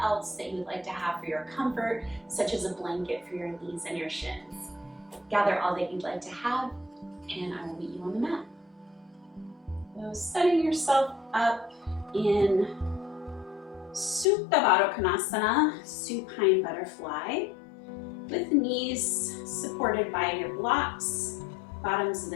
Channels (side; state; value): right; drops out; at 14.2 s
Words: that you'd like to have for your comfort, such as a blanket for your knees and your shins. Gather all that you'd like to have and I will meet you on the mat. So setting yourself up in Supta Baddha Konasana, supine butterfly, with knees supported by your blocks, bottoms of